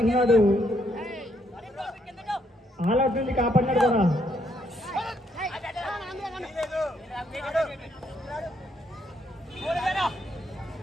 ఆల్అౌట్ నుంచి కాపాడినాడు కూడా.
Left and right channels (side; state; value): both; normal; correlation 0.73